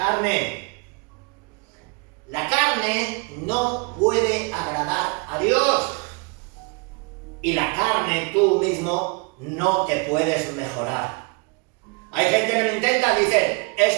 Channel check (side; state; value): left; quieter; 32.9 dB